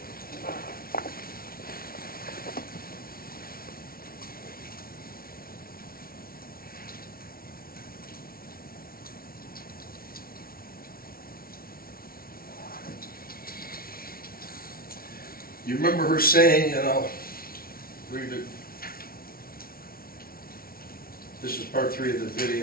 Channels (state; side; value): late; right; 0.43 ms